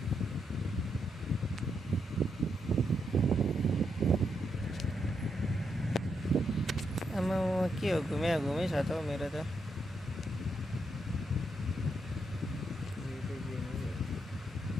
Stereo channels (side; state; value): both; normal; correlation 0.81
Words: आमा के हो घुमे छ त मेरो त